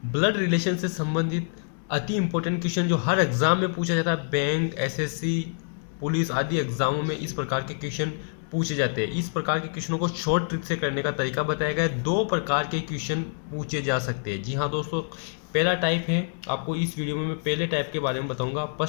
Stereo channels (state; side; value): silent; right; digital silence